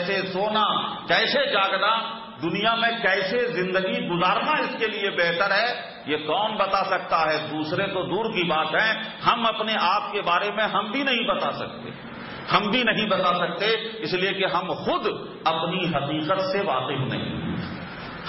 سونا، کیسے جاگنا، دنیا میں کیسے زندگی گزارنا اس کے لیے بہتر ہے، یہ کون بتا سکتا ہے؟ دوسرے تو دور کی بات ہے، ہم اپنے آپ کے بارے میں ہم بھی نہیں بتا سکتے، اس لیے کہ ہم خود اپنی حقیقت سے واقف نہیں،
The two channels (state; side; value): identical; both; correlation 1.00